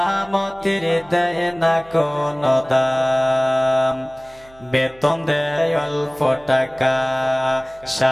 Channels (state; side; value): noise; right; hum, 27 dB below the sound